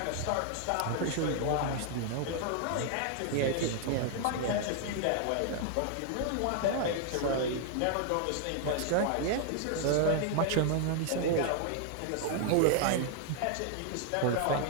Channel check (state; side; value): different; both; correlation 0.00